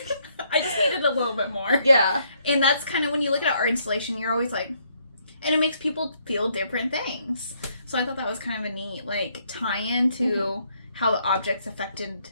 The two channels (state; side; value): inverted; both; correlation -0.70